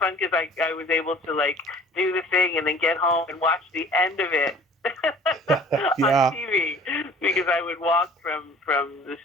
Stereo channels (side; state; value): both; normal; correlation 0.50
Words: because I was able to do the thing and then get home and watch the end of it on Yeah. TV because I would walk from the